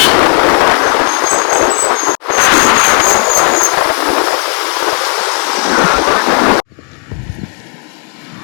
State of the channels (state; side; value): quieter; right; 33.1 dB